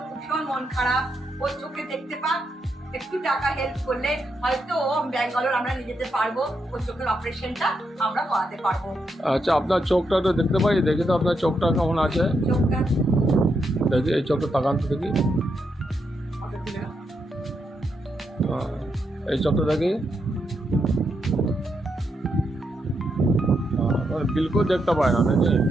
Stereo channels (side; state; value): both; normal; correlation 0.82